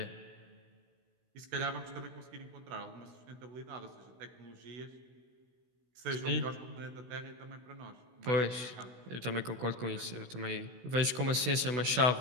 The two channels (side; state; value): left; late; 16 ms